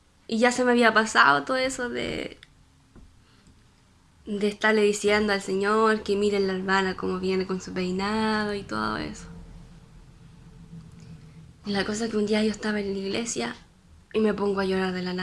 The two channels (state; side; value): identical; both; correlation 1.00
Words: y ya se me había pasado todo eso de estarle diciendo al Señor que miren la hermana como viene con su peinado y todo eso. Y la cosa es que un día yo estaba en la iglesia y me pongo a llorar de la